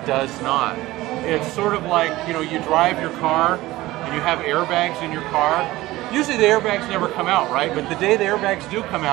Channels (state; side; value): quieter; left; 17.8 dB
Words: does not. It's sort of like, you know, you drive your car and you have airbags in your car. Usually the airbags never come out, right? But the day the airbags do come